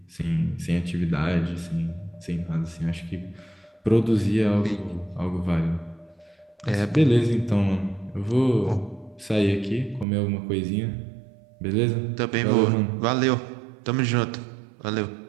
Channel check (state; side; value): drops out; left; at 10.1 s